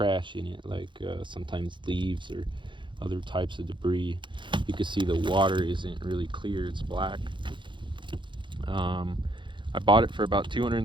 in it, like sometimes leaves or other types of debris. You can see the water isn't really clear, it's black. I bought it for about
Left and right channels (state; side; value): late; left; 0.23 ms